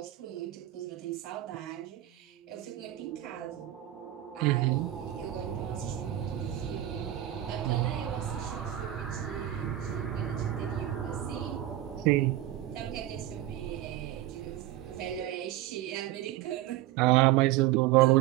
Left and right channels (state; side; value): quieter; left; 13.9 dB